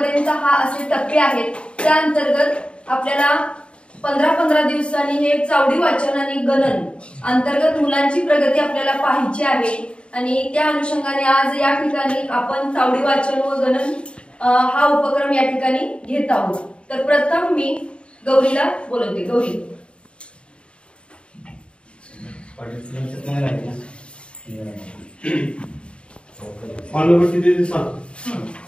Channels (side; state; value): right; late; 0.056 ms